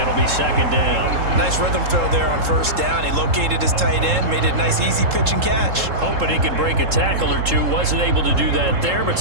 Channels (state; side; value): late; left; 3.7 ms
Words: be second down. Nice rhythm throw there on first down. He located his tight end, made it a nice, easy pitch and catch. Hoping he can break a tackle or two. Wasn't able to do that there, but